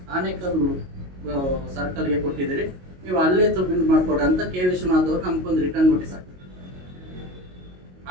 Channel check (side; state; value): left; late; 22 ms